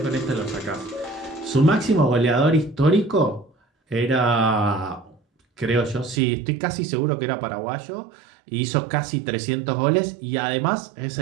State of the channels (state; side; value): drops out; left; at 6.2 s